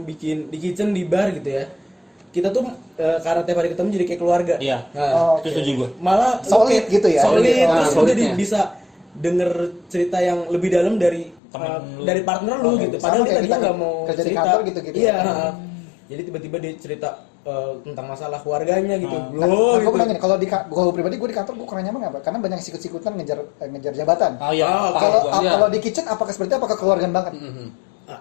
bikin di kitchen di bar gitu ya. Kita tuh karena tiap hari ketemu jadi kayak keluarga. Iya. Nah, Itu setuju gue. malah Solid gitu ya. Solid, terus udah solidnya. bisa denger cerita yang lebih dalam dari Temen lu. dari partner lu gitu. Sama Padahal kayak kita kita nggak mau kerja di cerita. kantor gitu-gitu. Iya. Jadi tiba-tiba dia cerita tentang masalah keluarganya gitu. Nah, Bro, gue gitu. bilang gini, kalau pribadi gue di kantor gue kurang nyaman apa? Karena banyak sikut-sikutan ngejar jabatan. Oh iya. Kalau di kitchen apakah seperti apa kekeluargaan banget?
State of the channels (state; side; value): drops out; right; at 11.4 s